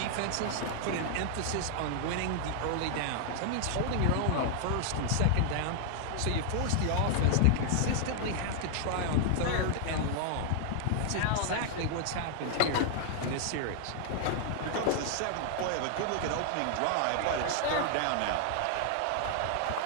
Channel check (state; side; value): different; both; correlation 0.00